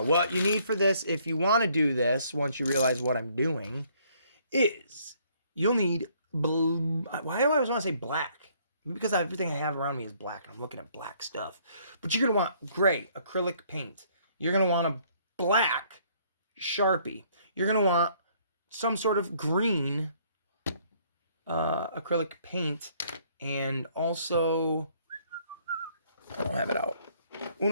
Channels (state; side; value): inverted; both; correlation -0.64